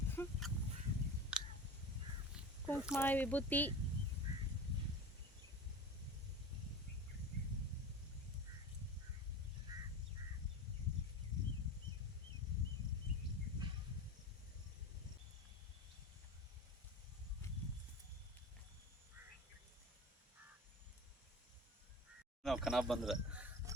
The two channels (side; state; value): both; normal; correlation 0.32